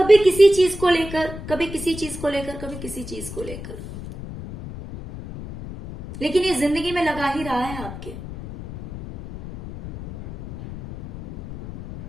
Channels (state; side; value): noise; left; rumble, 11 dB below the sound